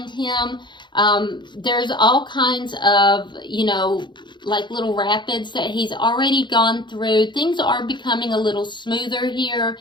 him, there's all kinds of, you know, like little rapids that he's already gone through. Things are becoming a little smoother here,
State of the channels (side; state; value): right; late; 0.22 ms